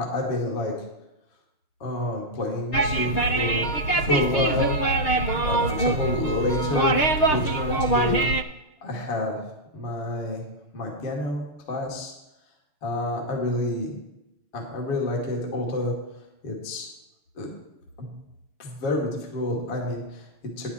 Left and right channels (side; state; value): right; late; 6.5 ms